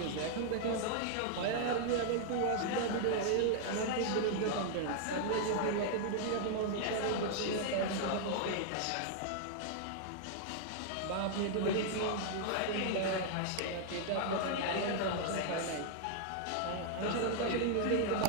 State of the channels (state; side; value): different; both; correlation -0.01